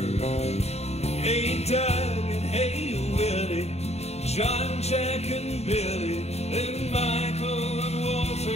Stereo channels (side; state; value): right; late; 0.31 ms